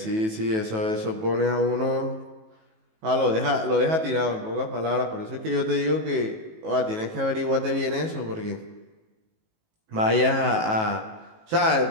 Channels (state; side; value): late; left; 19 ms